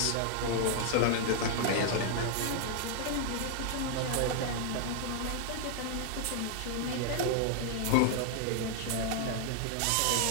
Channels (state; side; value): different; both; correlation 0.00